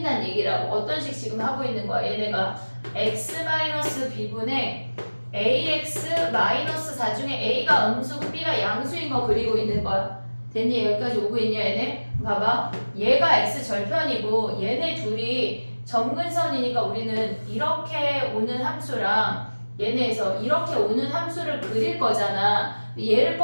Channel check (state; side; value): inverted; both; correlation -1.00